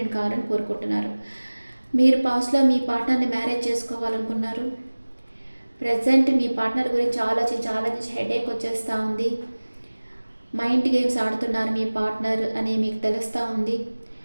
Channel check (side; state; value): both; inverted; correlation -1.00